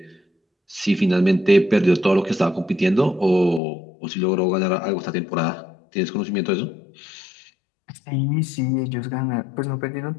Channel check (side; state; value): right; drops out; at 3.6 s